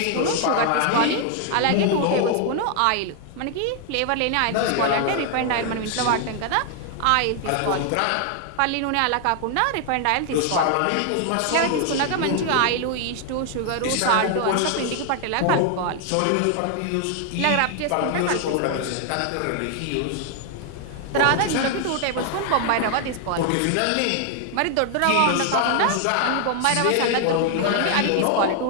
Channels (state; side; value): different; both; correlation 0.00